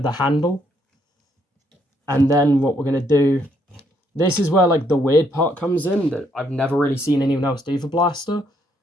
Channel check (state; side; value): normal; both; correlation 0.71